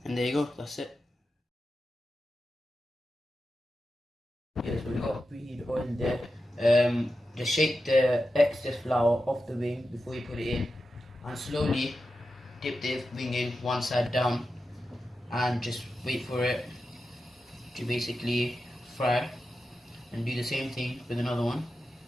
And there you go, that's it. Yes, we've got preheated oil there. Just shake the excess flour off the wing before you put it in, and slowly dip the wing in one side down, and just wait for it to basically fry. And do the same thing with another one.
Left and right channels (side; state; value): both; normal; correlation 0.91